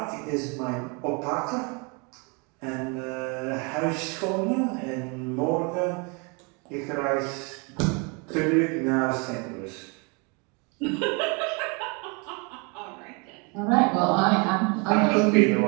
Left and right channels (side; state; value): left; quieter; 31.7 dB